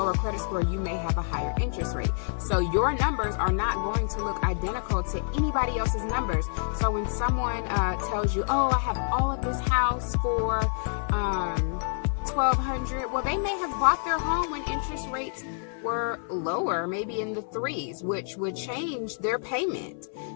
credit score, you may have a higher interest rate. So your numbers are not going to look identical to anybody else's numbers. So when someone tells you, oh, I have all of this house for $1,200, well, they may have bought their home when interest rates were lower, maybe in the 3s, which would change their payment.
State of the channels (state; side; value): silent; right; 56 dB below the other